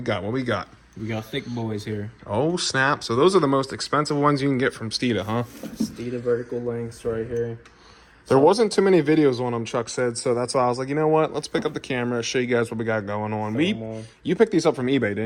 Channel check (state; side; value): identical; both; correlation 1.00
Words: got? We got thick boys here. Oh, snap. So those are the most expensive ones you can get from Steeda, huh? Steeda vertical lengths right here. There wasn't too many videos on them, Chuck said, so that's why I was like, you know what? Let's pick up the camera, show you guys what we got going on. You picked these up from eBay,